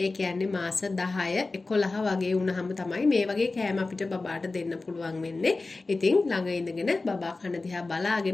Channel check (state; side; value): quieter; right; 3.5 dB